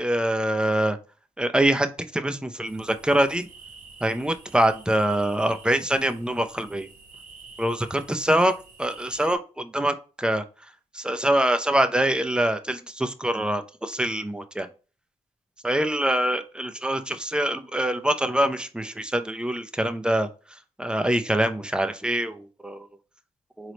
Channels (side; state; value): both; normal; correlation 0.86